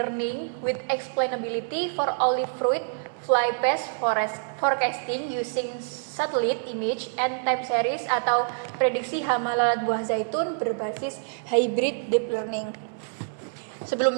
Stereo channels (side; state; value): left; silent; digital silence